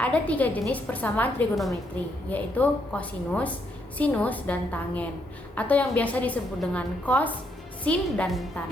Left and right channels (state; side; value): normal; both; correlation 0.75